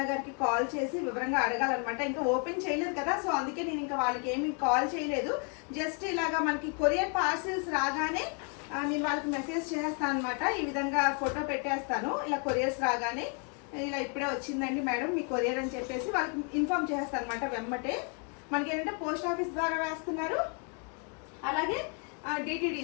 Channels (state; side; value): quieter; right; 38.5 dB